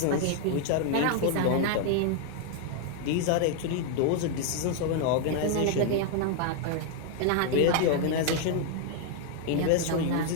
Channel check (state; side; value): different; both; correlation 0.00